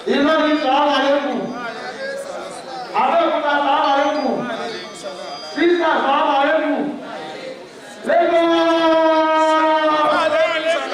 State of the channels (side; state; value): both; identical; correlation 1.00